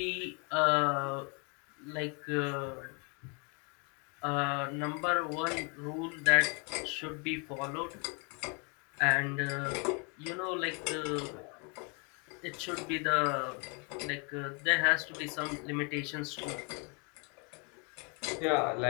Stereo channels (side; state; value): right; quieter; 34.1 dB